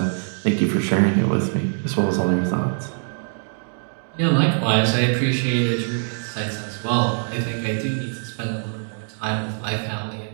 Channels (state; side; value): silent; left; 63 dB below the other